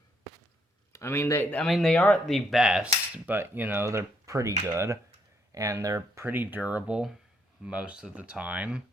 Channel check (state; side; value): normal; both; correlation 0.73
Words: I mean, they aren't the best, but, they're pretty good. And they're pretty durable most of the time.